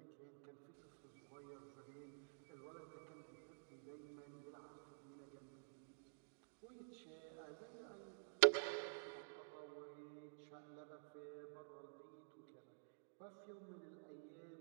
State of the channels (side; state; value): left; silent; digital silence